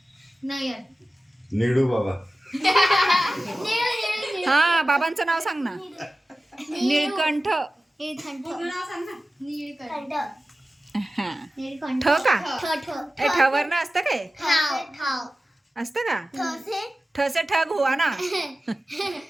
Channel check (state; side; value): normal; both; correlation 0.95